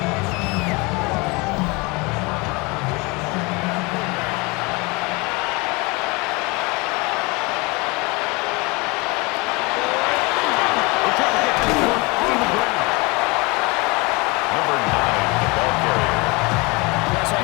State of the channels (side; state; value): right; quieter; 26.6 dB